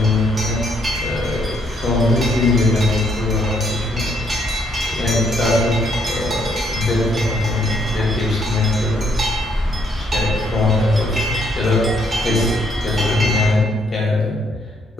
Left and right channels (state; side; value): normal; both; correlation 0.71